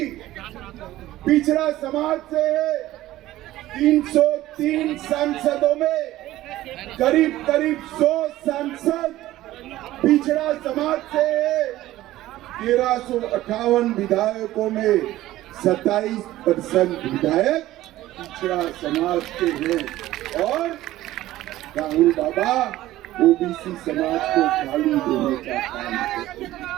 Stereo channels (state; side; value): quieter; left; 15.4 dB